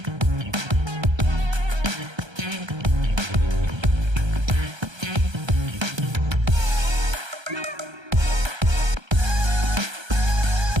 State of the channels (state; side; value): late; left; 1.3 ms